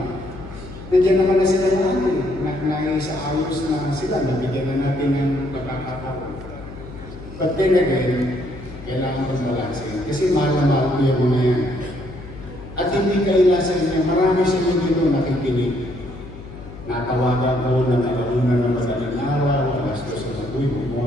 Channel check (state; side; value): noise; left; hum, 15 dB below the sound